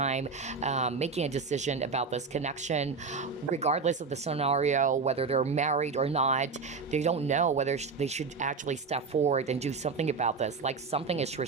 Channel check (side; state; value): left; quieter; 4.8 dB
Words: making a decision about this connection, regardless of the scenario, whether they're married or not. They don't know whether they should actually step forward and do something about this. Like something is